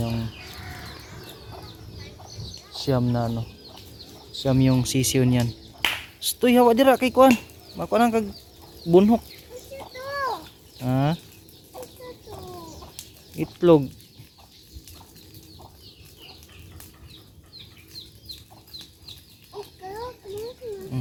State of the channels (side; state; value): both; identical; correlation 1.00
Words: siyam na siyam yung sisiyo niyan. Stoy hawa dira kay kuan. Mako nang kag bunhok. Ha? Itlog.